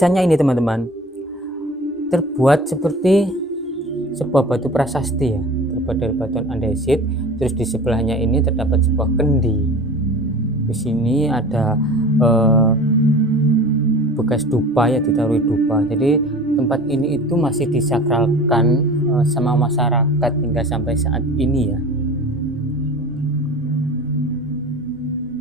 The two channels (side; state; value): both; normal; correlation 0.39